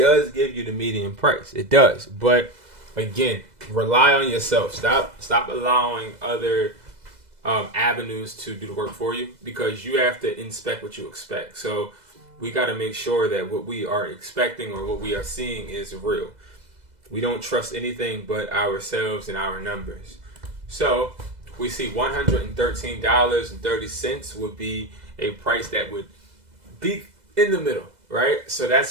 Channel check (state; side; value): late; left; 2.0 ms